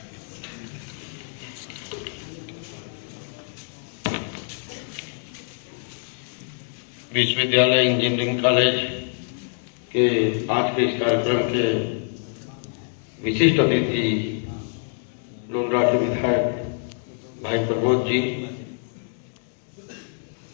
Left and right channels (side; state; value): right; silent; 59 dB below the other